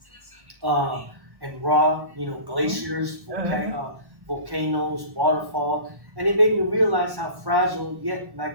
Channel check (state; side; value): late; left; 1.1 ms